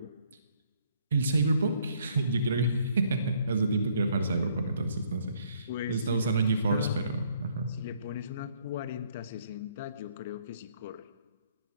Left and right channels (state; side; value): inverted; both; correlation -0.65